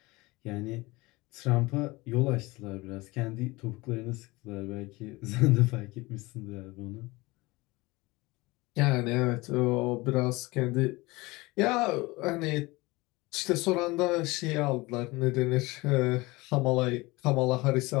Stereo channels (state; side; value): quieter; right; 22.4 dB